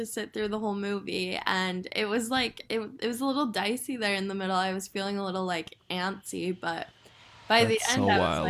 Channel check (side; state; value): both; identical; correlation 1.00